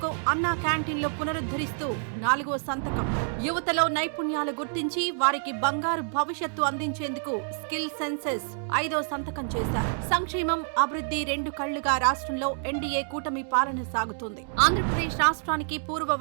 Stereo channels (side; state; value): left; silent; 58 dB below the other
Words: అన్నా క్యాంటీన్లు పునరుద్ధరిస్తూ నాలుగో సంతకం. యువతలో నైపుణ్యాలు గుర్తించి వారికి బంగారు భవిష్యత్తు అందించేందుకు స్కిల్ సెన్సెస్ ఐదో సంతకం చేశారు. సంక్షేమం, అభివృద్ధి రెండు కళ్లుగా రాష్ట్రంలో ఎన్డీఏ కూటమి పాలన సాగుతోంది. ఆంధ్రప్రదేశ్ రాష్ట్రానికి పూర్వ